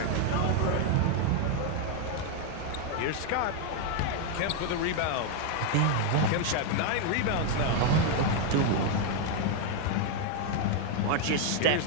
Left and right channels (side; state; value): both; different; correlation 0.01